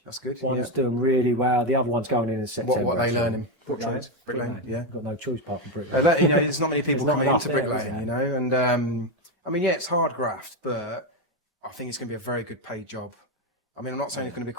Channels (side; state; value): both; normal; correlation 0.09